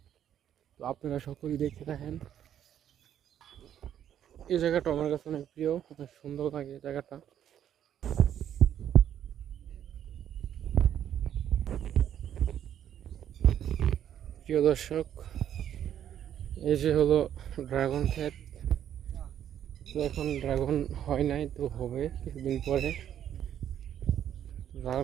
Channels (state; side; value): quieter; left; 10.1 dB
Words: তো আপনারা সকলেই দেখতে থাকেন। এই জায়গাটা আমার কাছে অনেক প্রিয়, অনেক সুন্দর লাগে এই জায়গাটা। প্রিয় দর্শক, এই যে হলো ড্রাগন ক্ষেত। তো এখন ড্রাগন হয় নাই, তো হবে কিছুদিন পরে। ড্রাগন